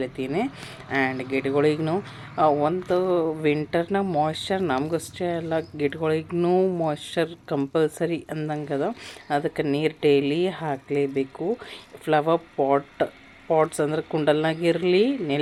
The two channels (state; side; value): identical; both; correlation 1.00